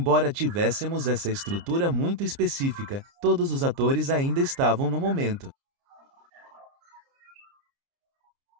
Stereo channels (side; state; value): left; late; 29 ms